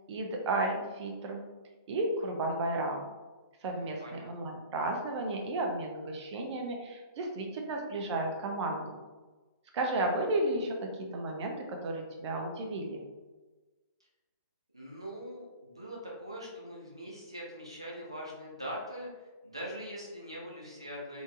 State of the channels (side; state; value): both; inverted; correlation -0.35